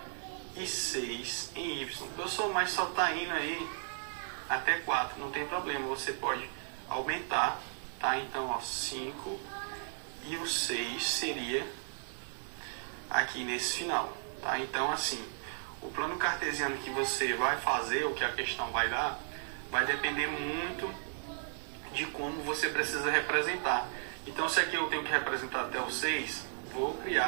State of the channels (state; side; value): silent; left; digital silence